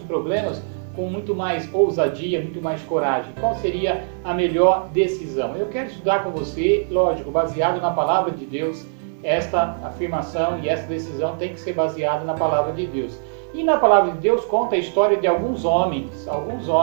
problemas com muito mais ousadia, muito mais coragem. Qual seria a melhor decisão? Eu quero estudar com você, lógico, baseado na palavra de Deus. Esta afirmação e essa decisão tem que ser baseada na palavra de Deus. E na palavra de Deus conta a história de alguns homens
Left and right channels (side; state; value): left; silent; digital silence